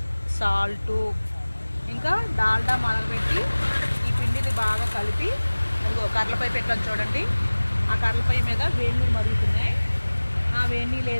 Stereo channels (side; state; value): both; inverted; correlation -1.00